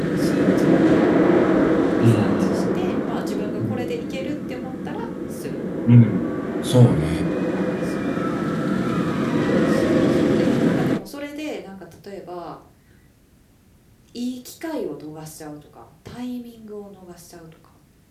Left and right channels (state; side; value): identical; both; correlation 1.00